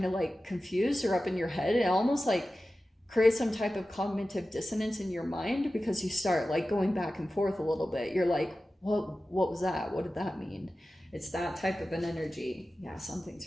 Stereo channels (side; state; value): both; normal; correlation 0.95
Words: of like confused or up in your head, and almost like create some type of cognitive dissonance in your mind, because you start like going back and forth a little bit. You're like, what was that? What did that mean? It's that type of an energy. Yeah, something's